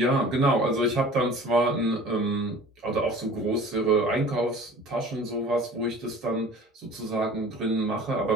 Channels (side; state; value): both; normal; correlation 0.44